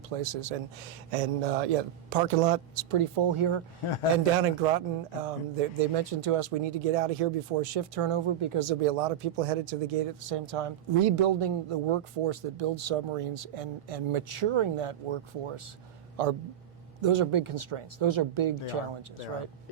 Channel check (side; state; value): left; quieter; 10.3 dB